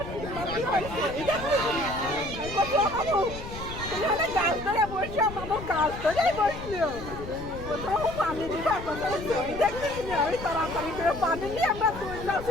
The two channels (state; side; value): noise; left; rumble, 11 dB below the sound